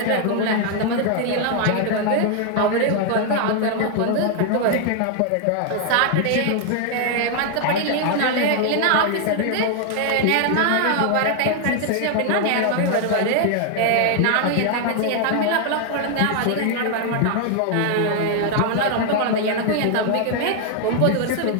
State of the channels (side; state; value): both; different; correlation 0.00